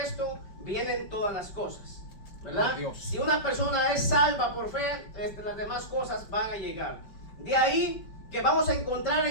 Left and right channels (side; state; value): right; late; 5.2 ms